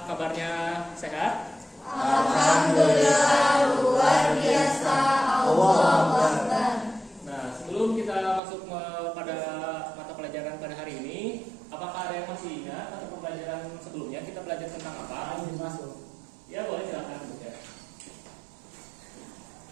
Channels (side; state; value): left; drops out; at 8.4 s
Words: kabarnya sehat? Alhamdulillah luar biasa. Allahu Akbar. Nah, sebelum kita masuk pada mata pelajaran pada hari ini, apakah ada yang masih ingat mata pelajaran sebelumnya kita belajar tentang apa? Masuk. Ya, boleh silakan Bu.